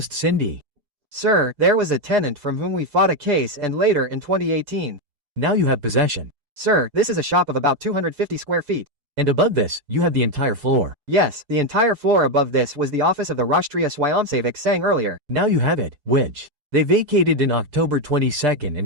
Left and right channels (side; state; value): left; late; 6.8 ms